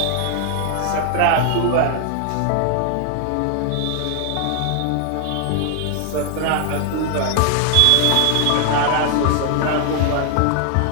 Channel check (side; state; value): both; different; correlation 0.00